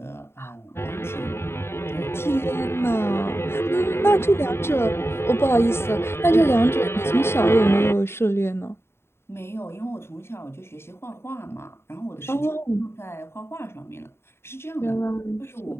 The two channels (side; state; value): right; late; 0.12 ms